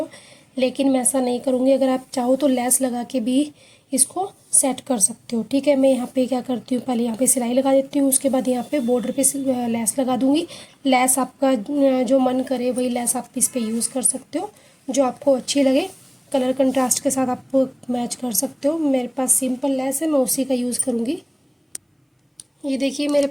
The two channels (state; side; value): identical; both; correlation 1.00